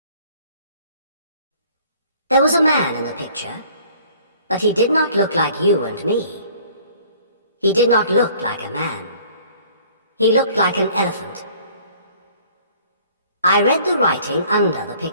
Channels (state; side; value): inverted; both; correlation -0.54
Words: There was a man in the picture, but he did not look like you and me. He did not look like a man. He looked like an elephant. I read the writing under the